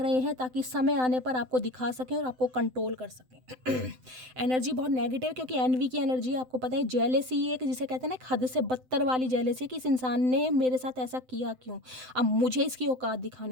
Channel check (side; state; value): left; late; 7.8 ms